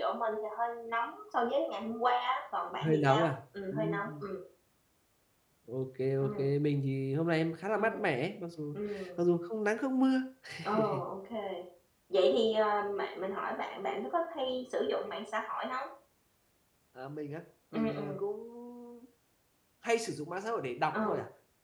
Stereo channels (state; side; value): identical; both; correlation 1.00